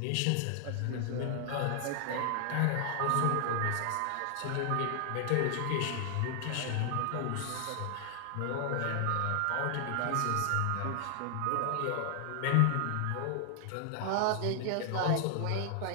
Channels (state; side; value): different; both; correlation 0.00